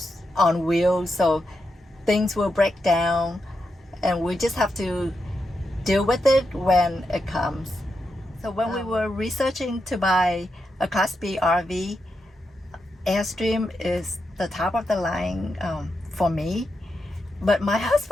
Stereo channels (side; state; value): both; normal; correlation 0.86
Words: on wheels, so things will break down, and we just have to deal with it when it comes. So when we were researching to buy a Class B RV, Airstream is the top of the line for me. But my